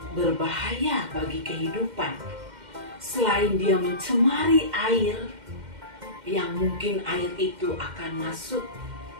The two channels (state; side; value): late; left; 2.1 ms